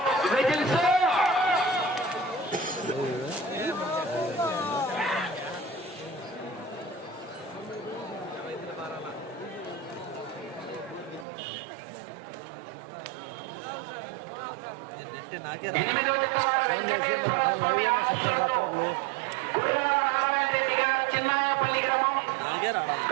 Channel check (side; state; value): left; drops out; at 11.2 s